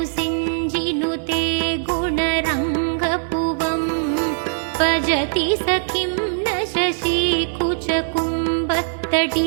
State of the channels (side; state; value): left; silent; digital silence